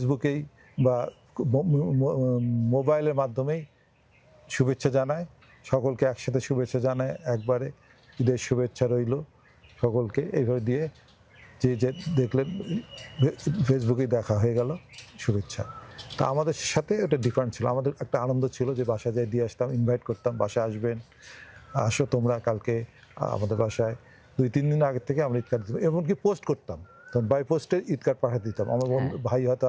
বা মোবাইলের মাধ্যমেই শুভেচ্ছা জানায়, সকলকে একসাথে শুভেচ্ছা জানায় একবারে, ঈদের শুভেচ্ছা রইল সকলকে, এইভাবে দিয়ে যে যে দেখলেন ফেসবুকেই দেখা হয়ে গেল শুভেচ্ছা। তা আমাদের সাথে ওটা ডিফারেন্ট ছিল, আমাদের একটা আনন্দ ছিল যে বাসায় যাই দিয়ে আসতাম, ইনভাইট করতাম, বাসায় আসবেন, আসো তোমরা কালকে আমাদের বাসায়। 2-3 দিন আগের থেকে আমরা ঈদ কার্ড দিতাম, এমনকি পোস্ট করতাম, তখন বাই পোস্টে ঈদ কার্ড পাঠিয়ে দিতাম। আমার বন্ধু ভাই হয়তো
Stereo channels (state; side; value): identical; both; correlation 1.00